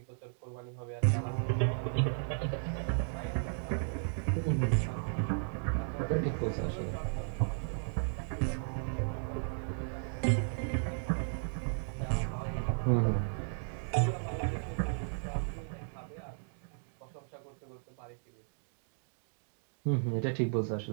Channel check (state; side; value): silent; left; digital silence